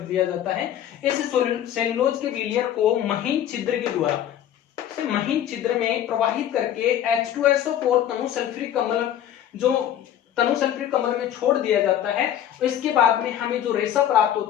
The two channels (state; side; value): quieter; right; 10.7 dB